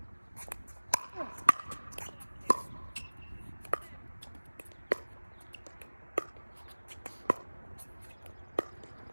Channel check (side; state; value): both; inverted; correlation -1.00